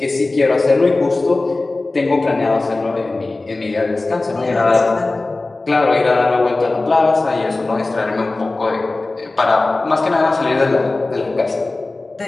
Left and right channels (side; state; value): right; quieter; 3.2 dB